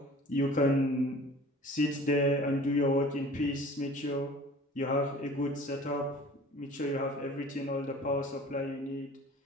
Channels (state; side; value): normal; both; correlation 0.46